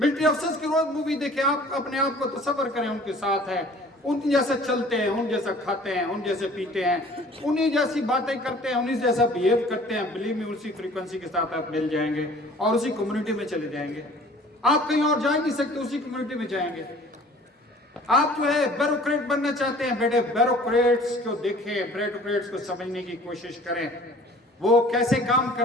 officers की रोज मूवी देखें, आप अपने आप को तसव्वुर करें उनके साथ है, उन जैसे चलते हैं, उन जैसा खाते हैं, उन जैसे पीते हैं, उन्हीं जैसी बातें करते हैं, उन्हीं जैसा बिहेव करते हैं। बिलीव मी, उसी फ्रीक्वेंसी के साथ आप मिल जाएंगे और उसी कम्युनिटी में चले जाएंगे। आप कहीं और जा नहीं सकते, उसी कम्युनिटी में जाएंगे। आप जो है ब्यूरोक्रेट बनना चाहते हैं बेटे, ब्यूरोक्रेट्स को देखें, ब्यूरोक्रेट्स को समझने की कोशिश करें, वो कैसे काम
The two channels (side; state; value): both; normal; correlation 0.49